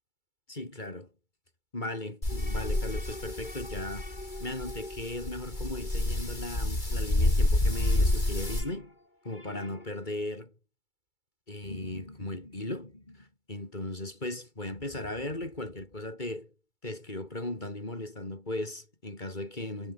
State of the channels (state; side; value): late; right; 2.3 ms